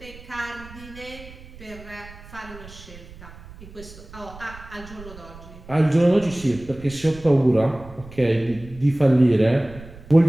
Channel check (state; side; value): noise; right; rumble, 18 dB below the sound